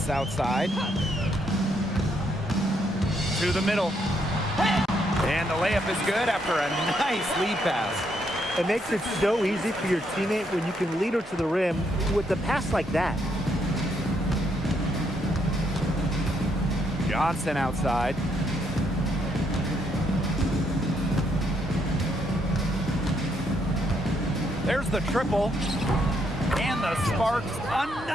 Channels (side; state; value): both; normal; correlation 0.75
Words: outside. To the middle. And the layup is good after a nice lead pass. It makes it so easy for your teammate when you can lead her to the rim with a pass like that. Johnson outside. There's the triple. And the Sparks,